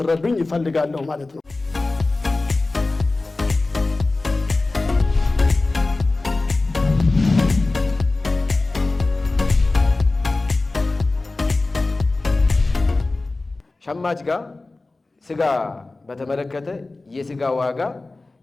ይፈልጋለሁ ማለት ነው። ሸማች ጋር ስጋ በተመለከተ የስጋ ዋጋ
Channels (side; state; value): right; quieter; 3.3 dB